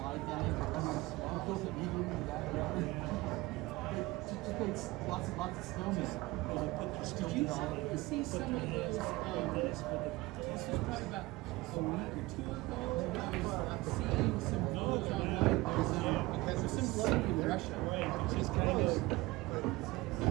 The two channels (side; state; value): left; quieter; 20.8 dB